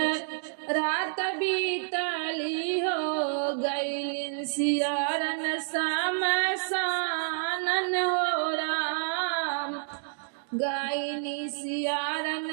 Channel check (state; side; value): silent; left; digital silence